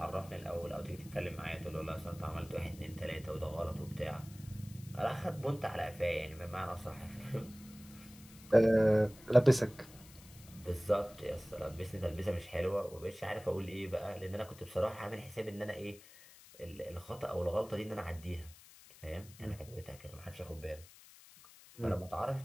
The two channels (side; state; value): left; noise; hiss, 21 dB below the sound